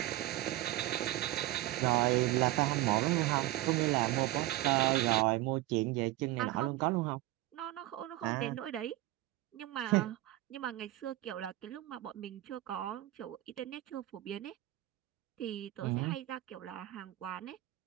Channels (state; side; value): quieter; left; 16.4 dB